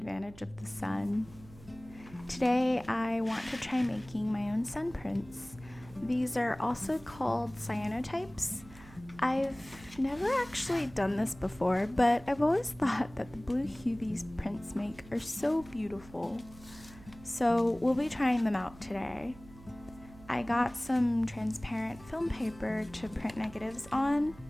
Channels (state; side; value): noise; right; hum, 20 dB below the sound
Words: of the sun. Today I want to try making my own sun prints. These are also called cyanotypes. I've never actually done this before, but I've always thought that the blue hue these prints make are so beautiful. So we'll be trying them out today. I got some transparent film paper to print negatives on,